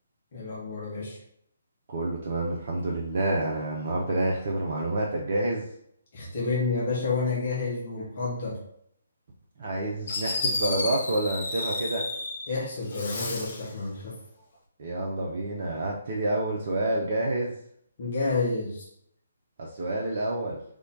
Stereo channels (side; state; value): both; inverted; correlation -0.66